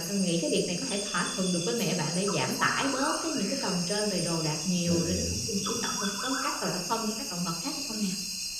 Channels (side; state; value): both; identical; correlation 1.00